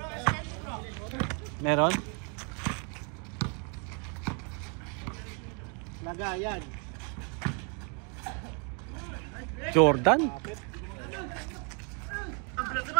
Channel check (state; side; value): quieter; left; 37.4 dB